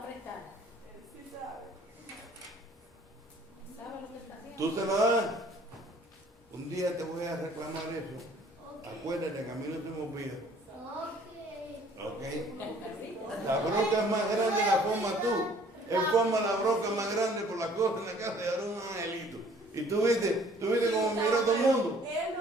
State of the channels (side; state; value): both; normal; correlation 0.56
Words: prestar. Él sí sabe. ¿Sabe lo que está haciendo? ¿Tú se la das? Un día te voy a reclamar eso. Ok. Acuérdate que a mí no se me olvida. Ok. ¿Ok? La bronca es más grande la forma tú. Él forma la bronca más grande por la cosa en la casa y ahora un angelito. Y tú viste cómo miró todo el mundo. Él